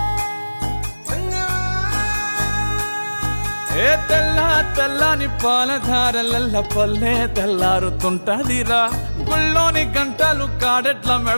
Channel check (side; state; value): both; inverted; correlation -1.00